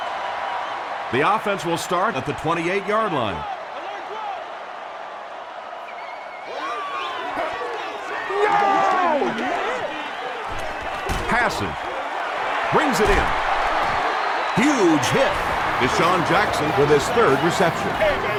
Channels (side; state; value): both; identical; correlation 1.00